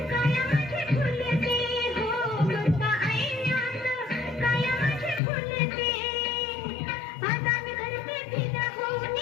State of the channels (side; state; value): right; drops out; at 5.2 s